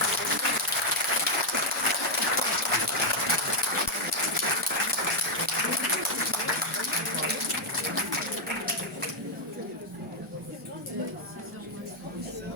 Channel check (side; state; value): both; normal; correlation 0.00